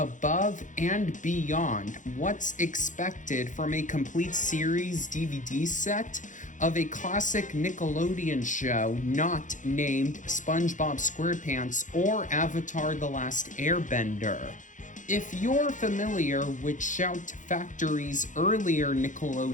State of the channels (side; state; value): right; late; 0.37 ms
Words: and beyond what's expected from a complete series DVD set of a classic Nickelodeon show not named SpongeBob SquarePants or Avatar: The Last Airbender. If you're familiar with Shout Factory's earlier